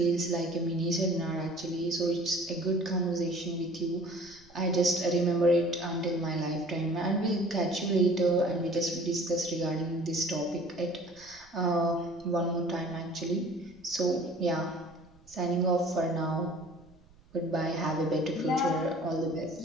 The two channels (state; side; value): noise; right; rumble, 28 dB below the sound